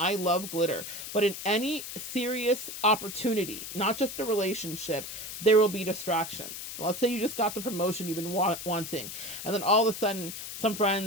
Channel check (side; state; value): left; noise; hiss, 8 dB below the sound